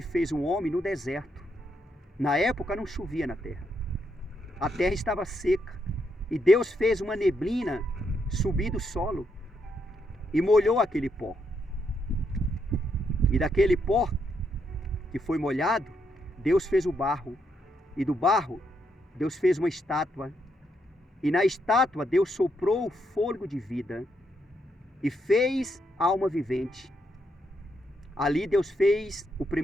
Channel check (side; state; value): both; normal; correlation 0.78